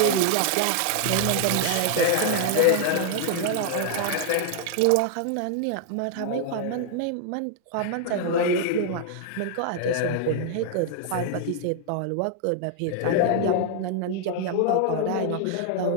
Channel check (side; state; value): both; different; correlation 0.00